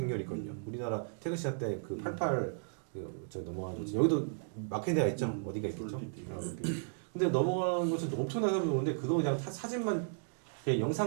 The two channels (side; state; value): left; silent; digital silence